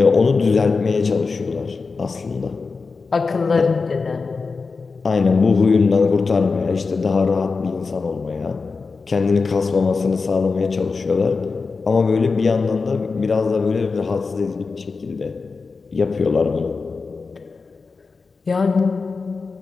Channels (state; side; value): quieter; right; 4.5 dB